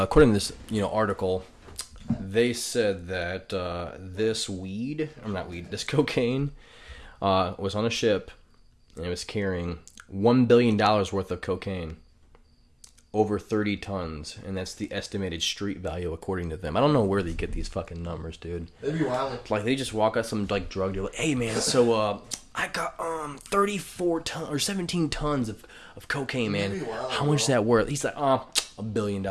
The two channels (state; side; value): identical; both; correlation 1.00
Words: to this article, they said that this cocaine was on a ship and it was carrying $1 billion worth of cocaine, over 30 tons, and that's the estimated street value according to them. I don't know where they get these fucking numbers, dude. They'd be wild. Like they just walk out some like drug dealer, hey man, so I got 34 tons or 17 tons of cocaine, man. Wild, how much is that worth? He's like, $1 billion,